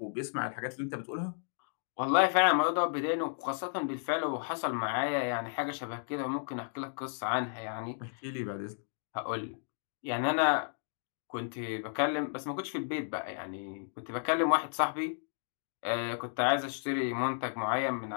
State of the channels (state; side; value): silent; right; digital silence